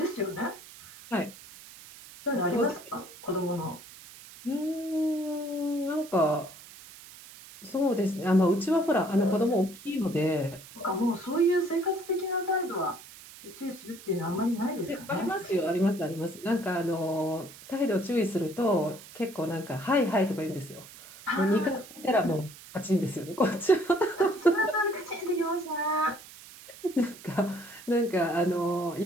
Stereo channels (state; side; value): noise; right; hiss, 18 dB below the sound